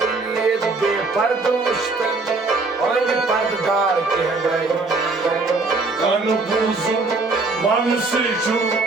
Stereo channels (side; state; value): left; quieter; 3.7 dB